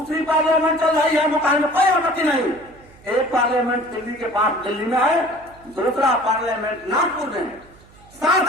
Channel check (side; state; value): right; noise; hum, 26 dB below the sound